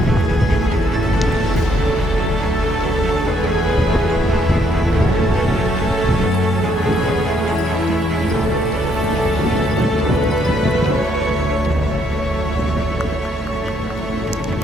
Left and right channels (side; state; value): both; normal; correlation 0.72